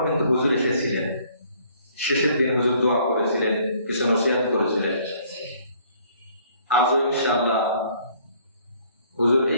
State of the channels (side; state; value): both; inverted; correlation -0.61